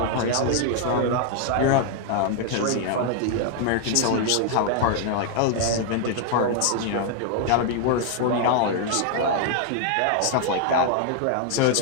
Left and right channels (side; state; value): both; different; correlation 0.00